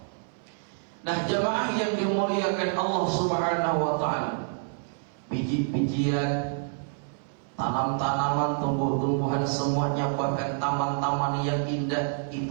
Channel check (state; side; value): silent; left; 60 dB below the other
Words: Nah jemaah yang dimuliakan Allah Subhanahu wa taala, biji-bijian, tanam-tanaman, tumbuh-tumbuhan, semuanya, bahkan taman-taman yang indah,